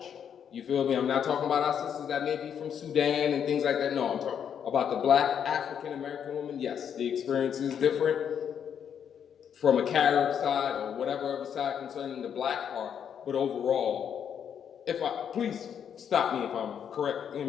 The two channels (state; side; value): quieter; right; 8.2 dB